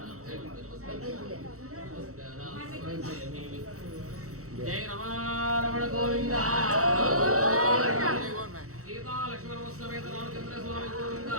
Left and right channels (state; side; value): late; left; 0.64 ms